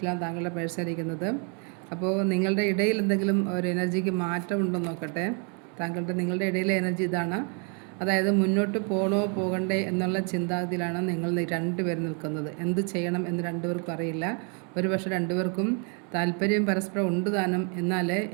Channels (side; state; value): left; quieter; 38.4 dB